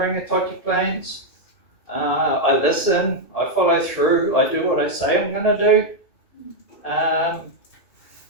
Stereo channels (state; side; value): late; right; 1.7 ms